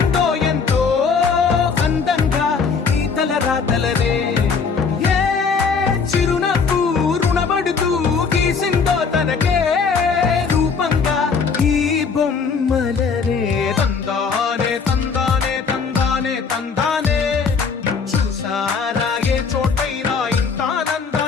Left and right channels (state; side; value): quieter; right; 5.4 dB